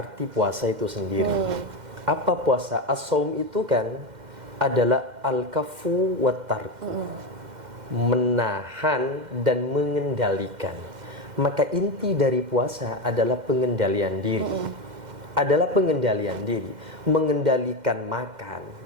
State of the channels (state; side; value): late; left; 2.1 ms